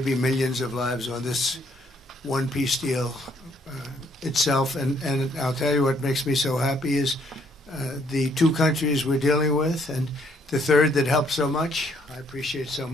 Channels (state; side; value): normal; both; correlation 0.67